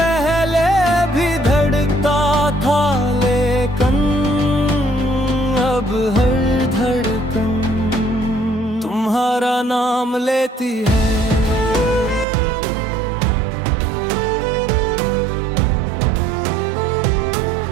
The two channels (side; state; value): left; drops out; at 12.2 s